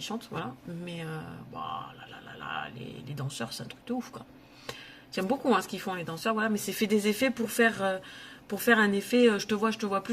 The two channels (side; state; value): both; identical; correlation 1.00